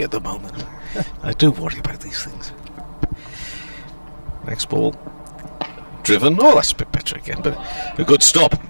at the moment. I do worry about these things. Next ball, driven. Oh, that's a bit better again, but a good stop.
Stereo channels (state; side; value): inverted; both; correlation -1.00